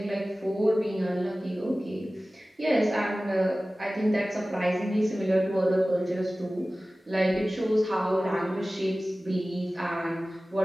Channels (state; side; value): normal; both; correlation 0.97